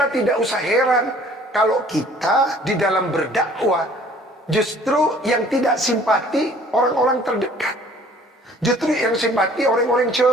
tidak usah heran kalau kita di dalam berdakwah justru yang tidak simpati orang-orang terdekat. Justru yang simpati orang-orang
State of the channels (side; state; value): both; normal; correlation 0.54